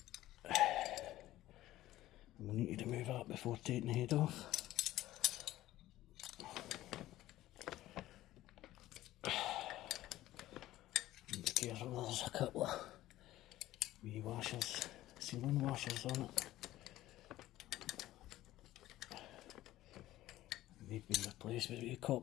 We'll need to remove that before taking the head off. And be careful, there's a couple of wee washers, sealing washers on it. They've been replaced with wee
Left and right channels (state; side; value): quieter; right; 15.3 dB